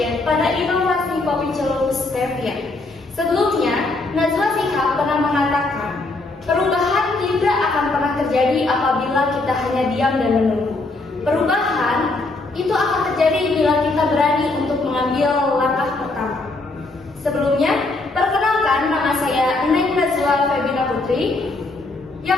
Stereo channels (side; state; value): right; quieter; 3.2 dB